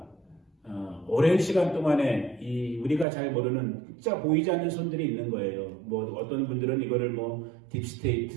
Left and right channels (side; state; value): left; drops out; at 3.1 s